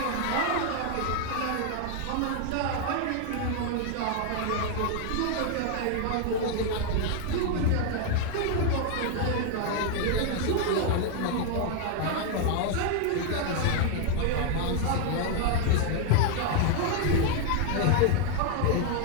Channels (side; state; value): both; different; correlation 0.00